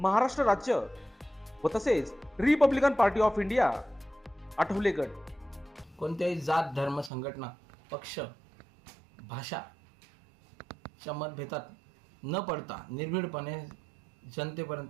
राज्य व तसेच Republican party of India Athawale गट. कोणत्याही जात, धर्म, संघटना, पक्ष, भाषाच्या मतभेदात न पडता निर्भीडपणे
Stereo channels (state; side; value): drops out; left; at 7.1 s